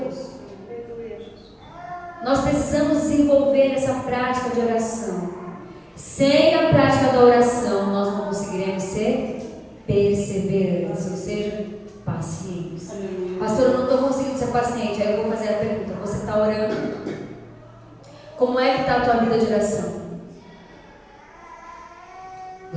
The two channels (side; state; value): both; identical; correlation 1.00